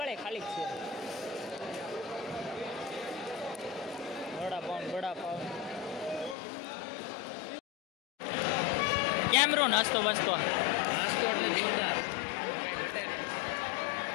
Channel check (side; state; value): right; drops out; at 6.4 s